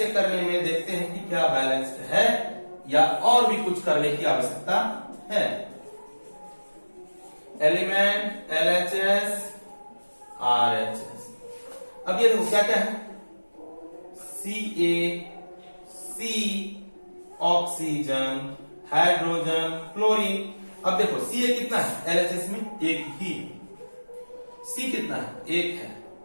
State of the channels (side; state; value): both; inverted; correlation -1.00